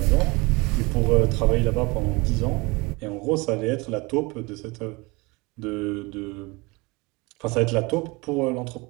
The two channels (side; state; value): left; quieter; 25.6 dB